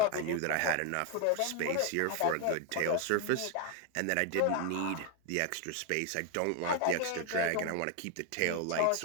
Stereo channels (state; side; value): different; both; correlation 0.01